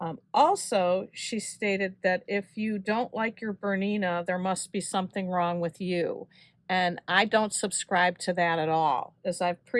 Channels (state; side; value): identical; both; correlation 1.00